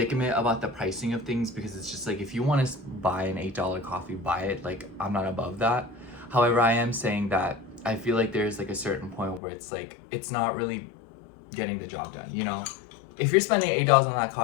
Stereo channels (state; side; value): drops out; right; at 9.4 s